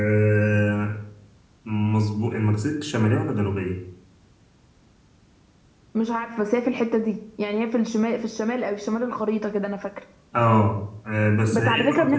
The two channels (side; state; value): both; identical; correlation 1.00